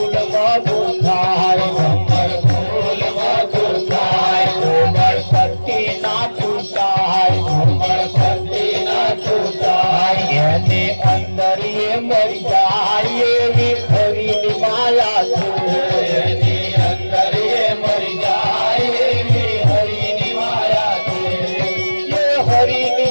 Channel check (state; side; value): inverted; both; correlation -1.00